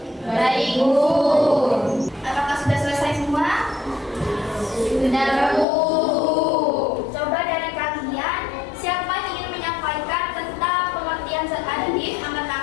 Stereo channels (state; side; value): drops out; right; at 5.7 s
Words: Baik, Bu. Apakah sudah selesai semua? Sudah, Bu. Coba dari kalian, siapa yang ingin menyampaikan tentang pengertian zat aditif? Angkat